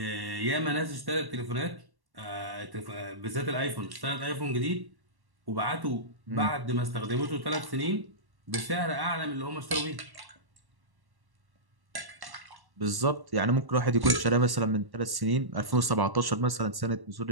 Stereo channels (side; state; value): left; late; 1.1 ms